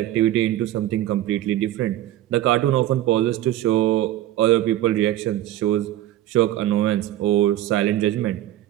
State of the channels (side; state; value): left; quieter; 13.7 dB